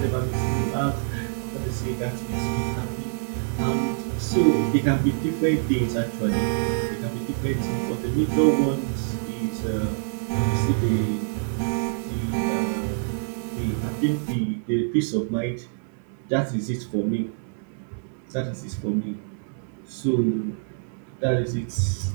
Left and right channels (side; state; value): left; silent; digital silence